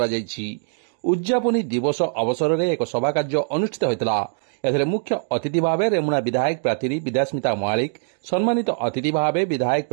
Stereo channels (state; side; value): silent; left; 64 dB below the other